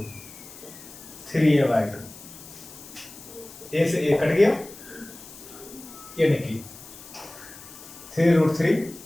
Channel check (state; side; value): noise; left; hiss, 17 dB below the sound